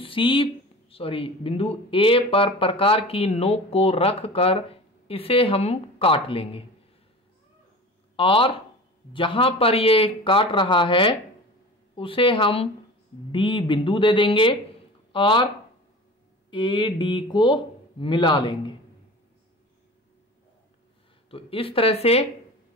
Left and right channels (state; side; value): normal; both; correlation 0.35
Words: बिंदु A पर प्रकार की नोक को रख कर इसे हम काट लेंगे, और जहां पर ये काट रहा है उसे हम D बिंदु दे देंगे और AD को मिला लेंगे। तो इस तरह से